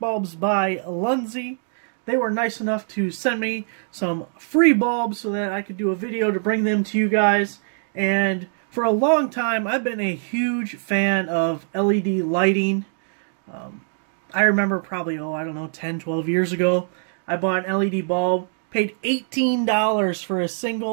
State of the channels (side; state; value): left; silent; digital silence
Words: bulbs by Lunsy. They were nice enough to send me some free bulbs so that I could do a video to bring them to you guys. And for a long time, I've been a huge fan of LED lighting. I remember probably, I don't know, 10, 12 years ago, I bought an LED bulb, paid $18 for a